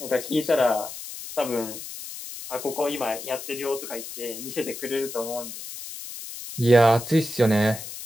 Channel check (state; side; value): noise; left; hiss, 10 dB below the sound